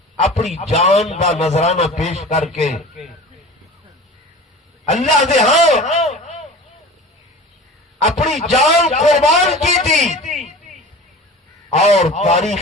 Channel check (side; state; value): both; normal; correlation 0.38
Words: اپنی جان کا نذرانہ پیش کر کے اللہ دے ہاں اپنی جان قربان کی تھی اور